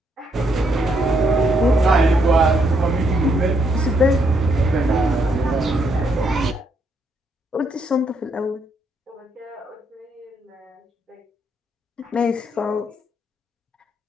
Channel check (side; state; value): both; normal; correlation 0.75